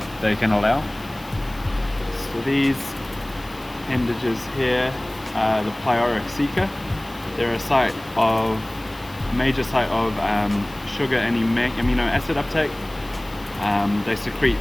can allow. So these appendages here are the pleuricoceca. They're a major site of sugar and amino acid uptake. They secrete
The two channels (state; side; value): noise; left; hiss, 23 dB below the sound